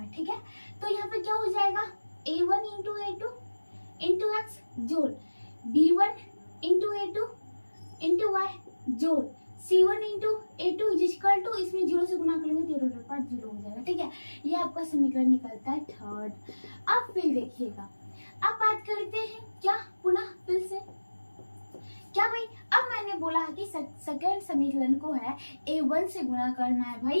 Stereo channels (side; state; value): both; inverted; correlation -1.00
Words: ठीक है, तो यहाँ पे क्या हो जाएगा, a1 into a2 into x जोड़ b1 into a2 into y जोड़ c1 into a2 equal to, इसमें 0 से गुना करेंगे तो टोटल पार्ट 0 हो जाएगा। ठीक है, ये आपका समीकरण निकलता है थर्ड। अब फिर देखिएगा, अब बात करते हैं क्या, पुनः फिर से क्या भाई, अब मैंने बोला है कि सेकंड समीकरण को है a1 से गुना करना है